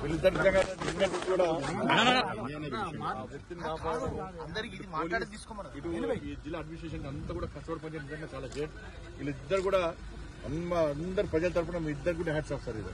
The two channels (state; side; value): identical; both; correlation 1.00